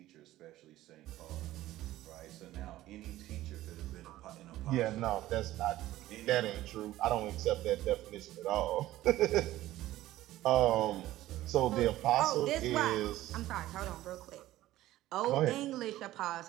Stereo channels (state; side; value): quieter; left; 15.3 dB